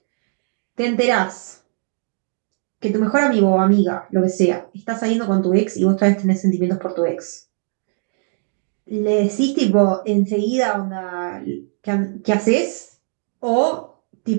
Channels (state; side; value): silent; left; 63 dB below the other